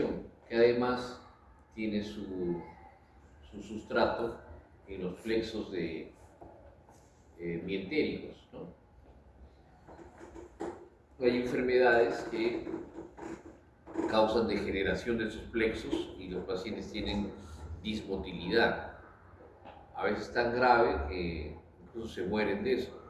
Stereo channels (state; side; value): identical; both; correlation 1.00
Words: que además tiene su sustrato en los plexos mientéricos, ¿no? Hay enfermedades que causan degeneración de sus plexos y los pacientes tienen dismotilidad, a veces tan grave que incluso se mueren de eso.